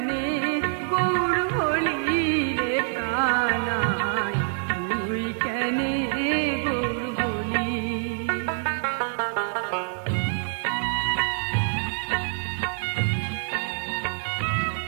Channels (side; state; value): left; silent; digital silence